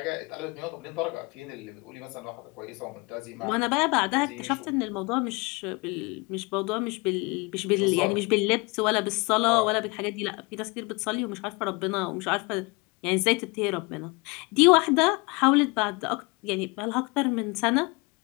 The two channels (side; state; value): right; quieter; 27.5 dB